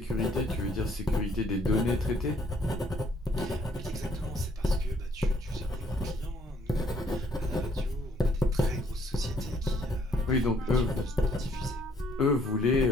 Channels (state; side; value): normal; both; correlation 0.65